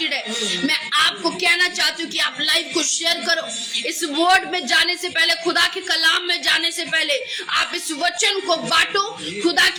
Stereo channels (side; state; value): both; identical; correlation 1.00